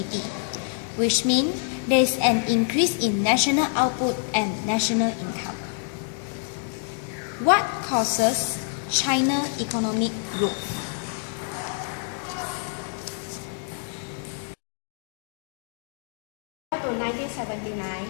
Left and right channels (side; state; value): right; silent; 57 dB below the other